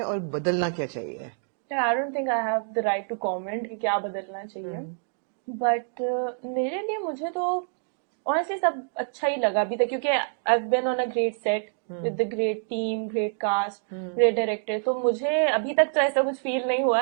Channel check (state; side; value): silent; left; digital silence